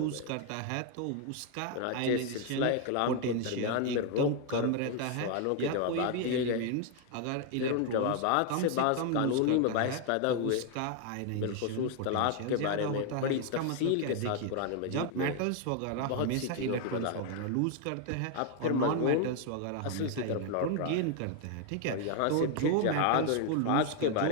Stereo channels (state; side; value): different; both; correlation 0.00